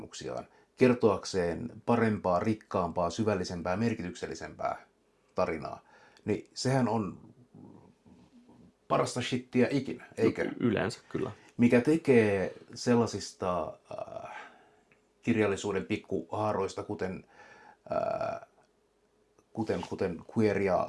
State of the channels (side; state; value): both; identical; correlation 1.00